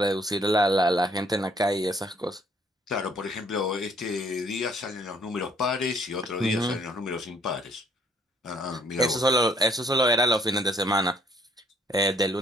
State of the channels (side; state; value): both; normal; correlation 0.63